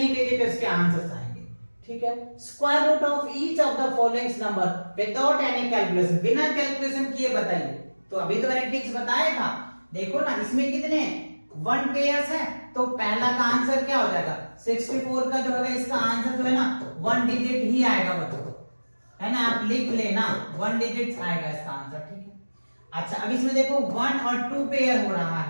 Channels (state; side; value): inverted; both; correlation -1.00